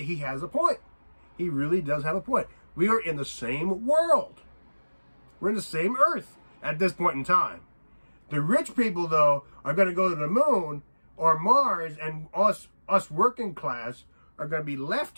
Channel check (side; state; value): both; inverted; correlation -1.00